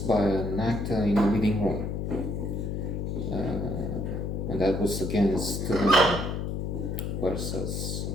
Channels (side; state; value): left; noise; hum, 2 dB below the sound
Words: an Actor in a Leading Role, and that was against versus